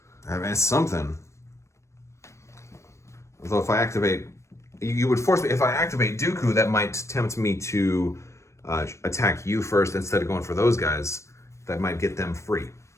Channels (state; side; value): late; right; 0.14 ms